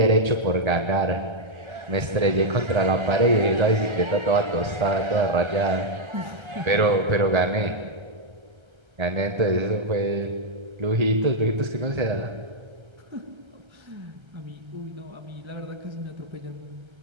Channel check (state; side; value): late; left; 1.3 ms